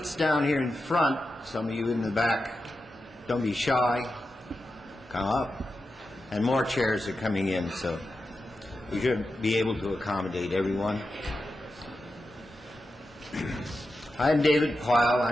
down here in front. Some of you in the back, don't be shy. Come up. And more chairs are coming in, so we should be able to accommodate everyone. I'm David Pyle.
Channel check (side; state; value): both; normal; correlation 0.90